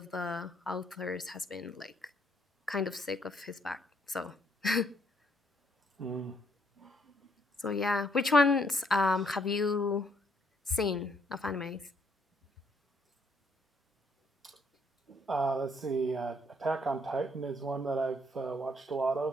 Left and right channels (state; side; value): normal; both; correlation 0.69